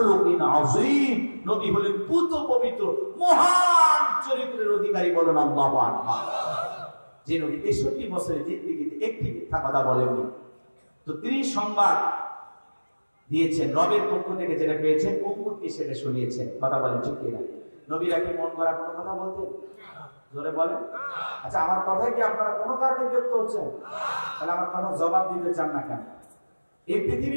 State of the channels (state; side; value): inverted; both; correlation -1.00